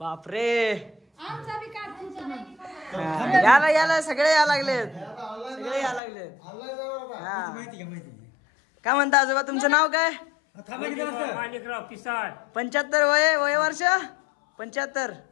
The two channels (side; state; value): right; drops out; at 6.0 s